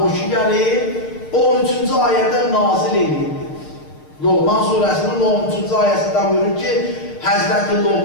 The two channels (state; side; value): late; right; 6.6 ms